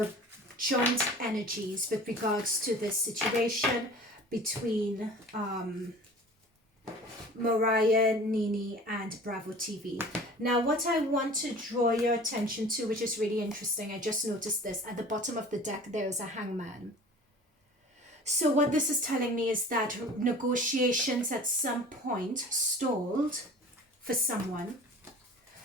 joint energies with regards to this situation between Mariah, Nene, and Bravo TV. Now, what I want to draw your attention to, which is really interesting, I just noticed this, at the bottom of the deck, there is a hangman. So what this is telling me is that negotiations at some point stalled for someone.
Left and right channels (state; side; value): normal; both; correlation 0.43